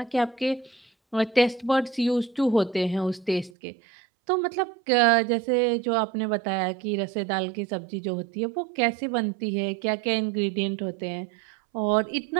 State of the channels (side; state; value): left; drops out; at 3.5 s